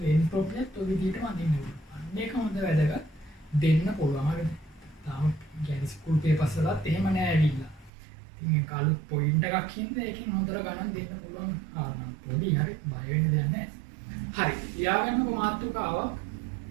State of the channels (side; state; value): left; drops out; at 7.9 s